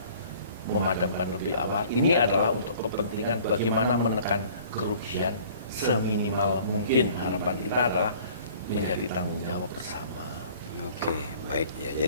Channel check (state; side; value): inverted; both; correlation -0.51